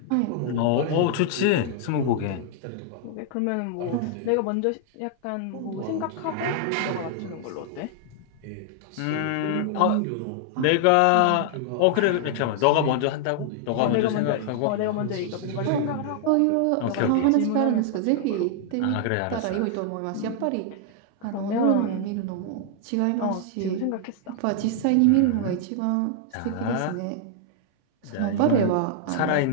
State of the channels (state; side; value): different; both; correlation 0.00